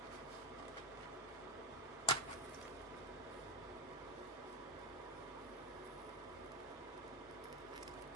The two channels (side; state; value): both; normal; correlation 0.09